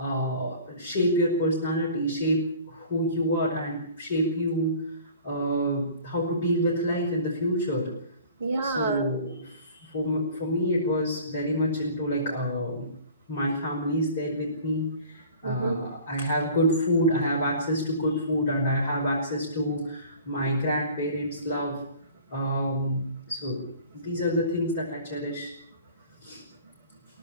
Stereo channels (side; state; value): both; inverted; correlation -0.46